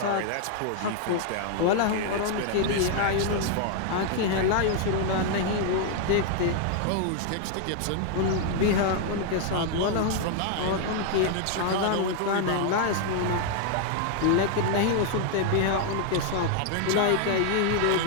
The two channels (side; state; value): both; different; correlation 0.00